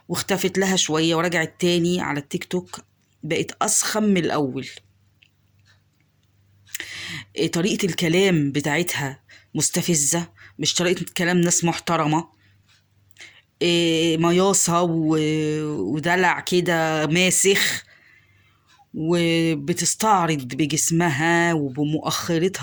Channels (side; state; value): both; identical; correlation 1.00